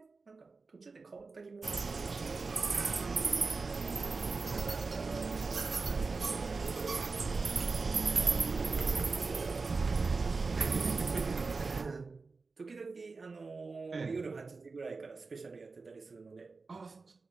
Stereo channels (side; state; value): left; quieter; 4.1 dB